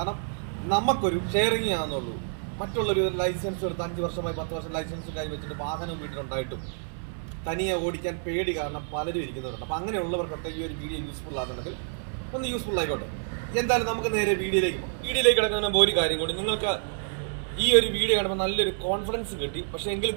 നമുക്കൊരു ഷെയറിങ് ആണെന്നുള്ളൂ. മറ്റുള്ളൊരു ലൈസൻസ് എടുത്ത് 5 വർഷമായി 10 വർഷം ലൈസൻസ് കൈവച്ചിട്ട് വാഹനവും വീട്ടിലുണ്ടായിട്ടും തനിയെ ഓടിക്കാൻ പേടി കാരണം പലരും ഇരിക്കുന്നവരുണ്ട്. അപ്പം അങ്ങനെയുള്ളവർക്കൊക്കെ ഈ ഒരു വീഡിയോ യൂസ്ഫുൾ ആകുന്നുണ്ടെങ്കിൽ ഒന്ന് യൂസ്ഫുൾ ആയിക്കോട്ടെ. എന്തായാലും നമുക്ക് നേരെ വീഡിയോയിലേക്ക് കിടക്കുന്ന ഒരു കാര്യം കൂടി, നിങ്ങൾക്ക് ഈ ഒരു വീഡിയോ കാണുമ്പോൾ നല്ലൊരു കോൺഫിഡൻസ് കിട്ടി, പക്ഷേ എങ്കിലും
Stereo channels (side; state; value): left; silent; digital silence